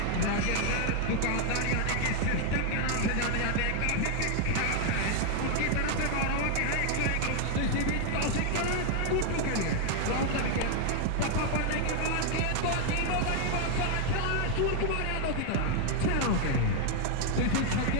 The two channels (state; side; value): different; both; correlation 0.00